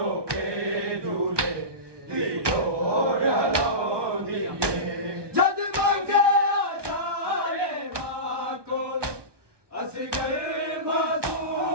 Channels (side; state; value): left; late; 1.2 ms